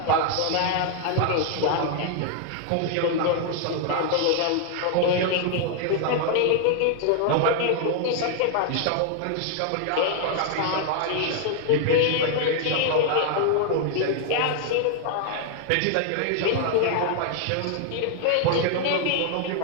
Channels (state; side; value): different; both; correlation 0.00